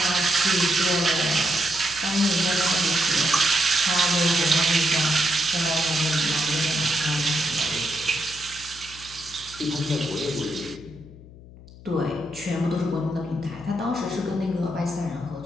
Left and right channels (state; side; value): noise; left; hum, 19 dB below the sound